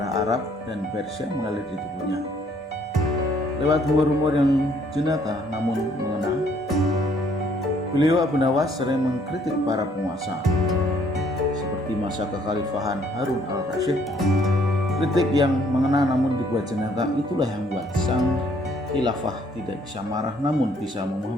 Arab dan Persia mengalir di tubuhnya. Lewat humor-humor yang jenaka namun mengena, beliau Abu Nawas sering mengkritik para penguasa seperti masa kekhalifahan Harun al-Rasyid. Kritik yang mengena namun dibuat jenaka itulah yang membuat sang khilafah tidak bisa marah namun bisa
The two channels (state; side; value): normal; both; correlation 0.64